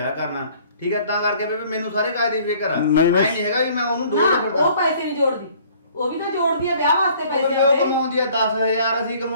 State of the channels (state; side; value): inverted; both; correlation -0.56